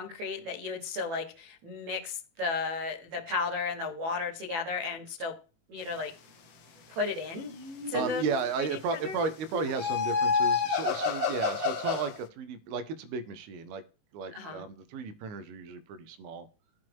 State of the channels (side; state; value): left; late; 18 ms